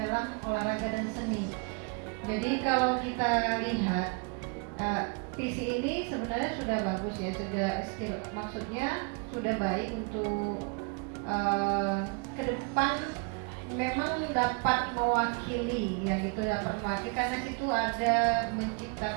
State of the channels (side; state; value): left; quieter; 33.8 dB